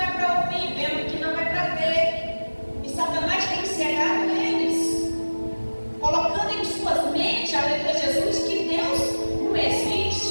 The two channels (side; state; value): both; inverted; correlation -1.00